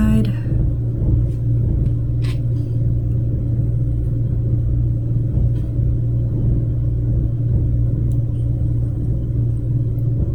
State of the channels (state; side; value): identical; both; correlation 1.00